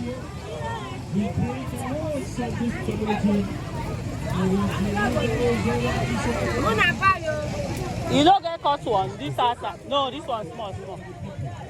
You don't get caught one. This asa. No, this one's small.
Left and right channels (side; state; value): both; identical; correlation 1.00